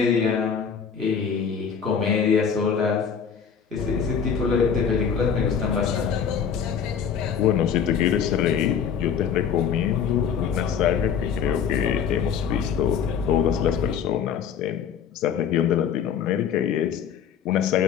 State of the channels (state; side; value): quieter; right; 7.4 dB